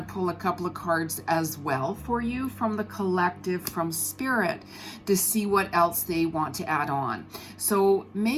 pull a couple of cards as well for you from the collective, from Spirit, to see what else they want to add on. So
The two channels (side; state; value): both; identical; correlation 1.00